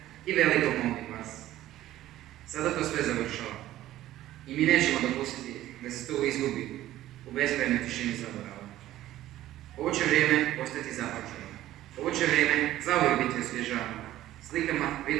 i velikog mobbing klasa. Sada to sve završava. I mi nećemo dopustiti da se to izgubi u beskrajnoj tišini zaborava. Ovo će vrijeme ostati započelo. Ovo će vrijeme zauvijek biti osvježavano slikama,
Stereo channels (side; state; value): left; quieter; 14.3 dB